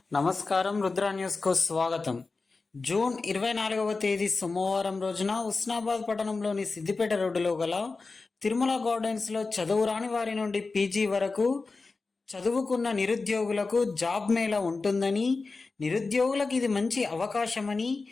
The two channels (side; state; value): right; quieter; 4.0 dB